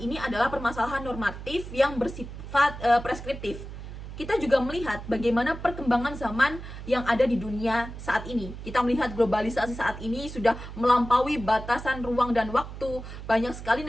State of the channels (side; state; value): right; noise; hum, 11 dB below the sound